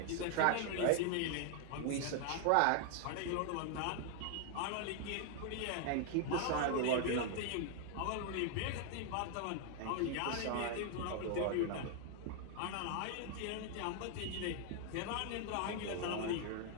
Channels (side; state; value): both; different; correlation 0.00